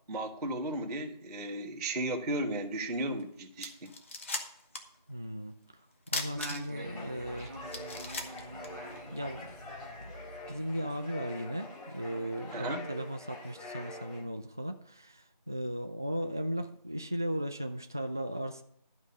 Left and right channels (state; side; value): inverted; both; correlation -0.58